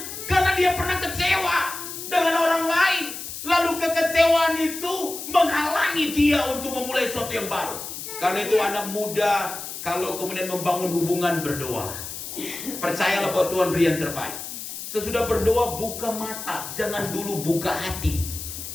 karena dia pernah kecewa dengan orang lain. Lalu kekecewaan itu menghalangi dia untuk memulai sesuatu yang baru. Karena itu anak muda, kalau kemudian membangun hubungan, berdoa. Percayalah bahwa Tuhan beri yang terbaik. Sesudah berdoa, buka mata. Jangan dulu buka hati.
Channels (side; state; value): left; noise; hiss, 9 dB below the sound